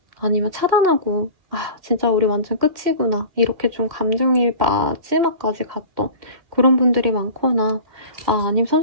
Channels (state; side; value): late; left; 2.1 ms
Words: 아니면 차단하고 진짜 우리 완전 끝이구나 이렇게 좀 감정이 마지막까지 갔던 그런 분들이 많거나 아니면